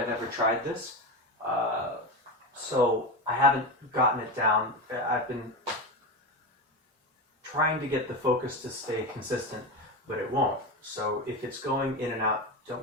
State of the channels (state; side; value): normal; both; correlation 0.19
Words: ever tried this, so I haven't gotten it down. I've been trying to get the focus to stay consistent, but it won't. So if it's going in and out, don't